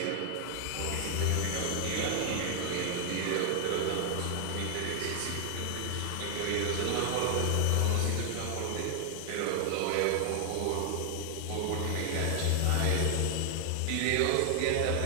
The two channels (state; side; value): different; both; correlation 0.00